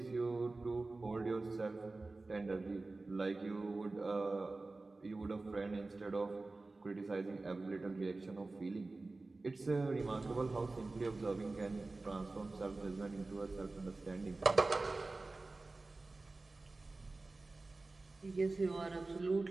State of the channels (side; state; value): left; quieter; 3.3 dB